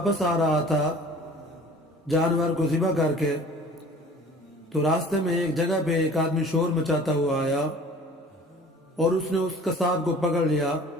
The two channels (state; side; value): normal; both; correlation 0.47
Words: آ رہا تھا جانور کو ذبح کر کے، تو راستے میں ایک جگہ پہ ایک آدمی شور مچاتا ہوا آیا اور اس نے اس قصاب کو پکڑ لیا۔